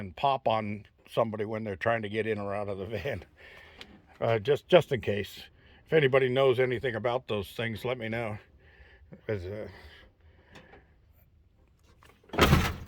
pop on somebody when they're trying to get in or out of the van. Just in case. If anybody knows anything about those things, let me know. Because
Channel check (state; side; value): identical; both; correlation 1.00